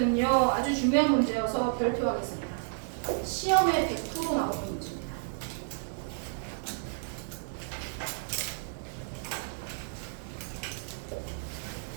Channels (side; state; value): left; silent; digital silence